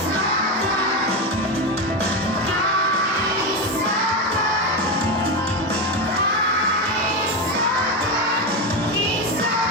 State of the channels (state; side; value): normal; both; correlation 0.13